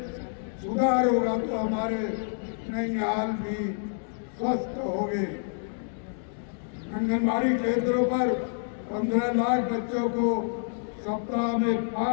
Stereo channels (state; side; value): silent; right; digital silence